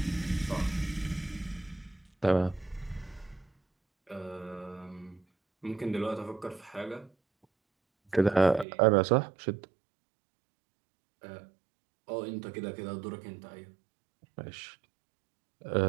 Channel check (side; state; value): left; drops out; at 8.7 s